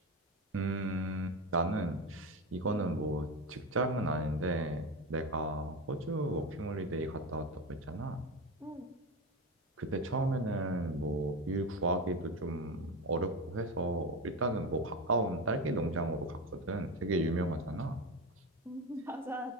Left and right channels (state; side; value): normal; both; correlation 0.20